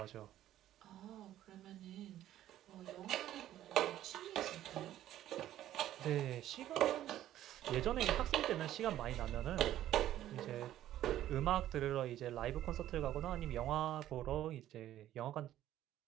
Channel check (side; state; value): left; quieter; 12.8 dB